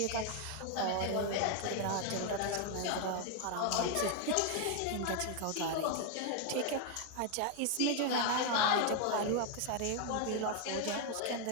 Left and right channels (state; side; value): different; both; correlation 0.01